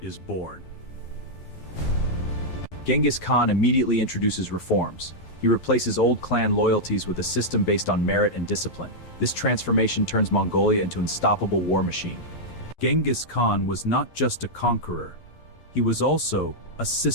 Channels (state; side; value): late; right; 11 ms